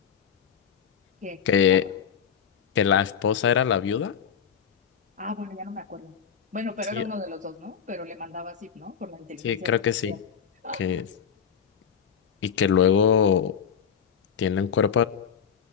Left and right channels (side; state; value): right; quieter; 7.5 dB